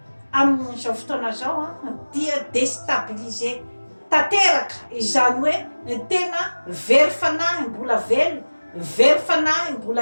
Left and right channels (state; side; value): inverted; both; correlation -1.00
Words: amin'izao fotoana zao dia déstabilisé tanteraka izany hoe tena very fanahy mbola very fanahy